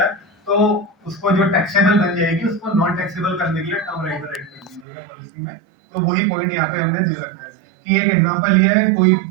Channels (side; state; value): left; drops out; at 4.9 s